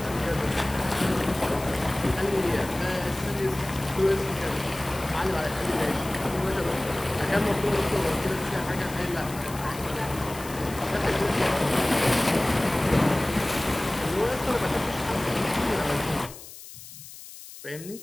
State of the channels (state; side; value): noise; left; hiss, 15 dB below the sound